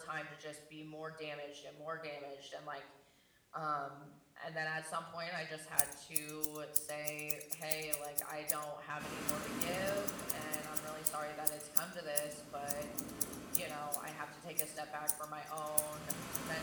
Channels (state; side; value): identical; both; correlation 1.00